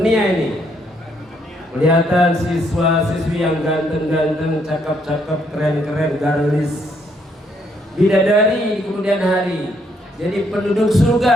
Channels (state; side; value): normal; both; correlation 0.71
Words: ini. Kelihatan siswa-siswi yang ganteng-ganteng, cakep-cakep, keren-keren, garlis, bidadari di kemudian hari. Jadi penduduk